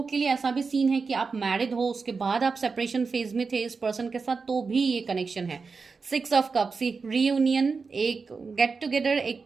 के लिए ऐसा भी सीन है कि आप मैरिड हो, उसके बाद आप सेपरेशन फेज में थे इस पर्सन के साथ, तो भी ये कनेक्शन है। 6 ऑफ कप्स, रीयूनियन, एक गेट टुगेदर,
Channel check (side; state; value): left; quieter; 4.7 dB